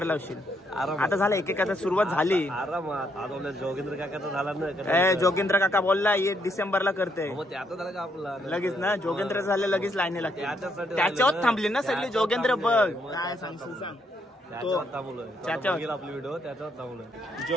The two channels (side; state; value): both; normal; correlation 0.74